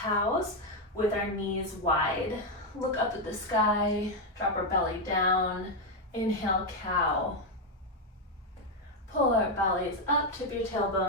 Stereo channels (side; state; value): both; normal; correlation 0.04